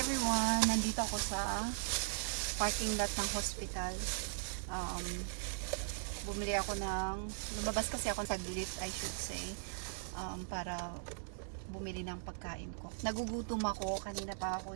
Nandito ako sa parking lot ng hospital. Bumili ako lumabas kasi ako saglit, I should say, para bumili ng pagkain ko. Nagugutom ako, kanina pa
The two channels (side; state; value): left; silent; digital silence